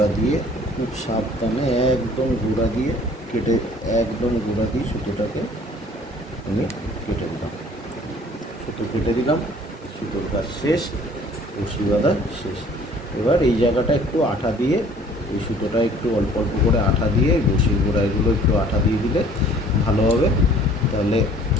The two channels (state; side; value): normal; both; correlation 0.53